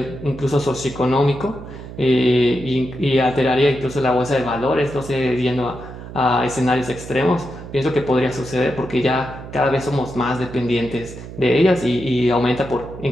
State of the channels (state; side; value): noise; right; hum, 13 dB below the sound